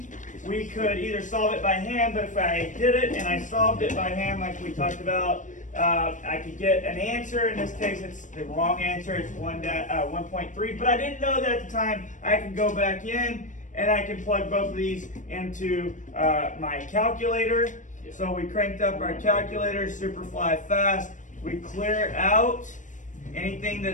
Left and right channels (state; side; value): late; right; 0.37 ms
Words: we could either solve it by hand, but if I did it and I solved it by hand like we talked about, I could get an answer. In this case, it's the wrong answer. It's 1.3, but I didn't know that at the time. I can go back in and I can plug both of these into my calculator. So we cranked up our calculator, super fly fast. We clear out anything